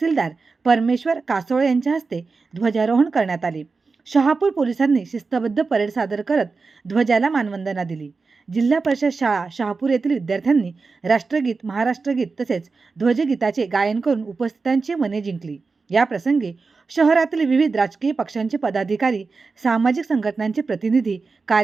परमेश्वर कासोळे यांच्या हस्ते ध्वजारोहण करण्यात आले। शहापूर पोलिसांनी शिस्तबद्ध परेड सादर करत ध्वजाला मानवंदना दिली। जिल्हा परिषद शाळा शहापूर येथील विद्यार्थ्यांनी राष्ट्रगीत, महाराष्ट्रगीत तसेच ध्वजगीताचे गायन करून उपस्थितांची मने जिंकली। या प्रसंगी शहरातील विविध राजकीय पक्षांचे पदाधिकारी, सामाजिक संघटनांचे प्रतिनिधी,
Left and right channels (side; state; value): left; quieter; 4.3 dB